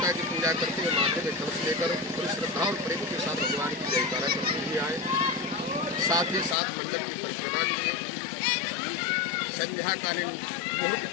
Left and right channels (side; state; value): right; drops out; at 6.6 s